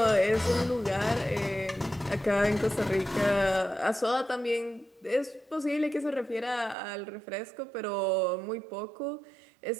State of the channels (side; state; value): left; drops out; at 6.8 s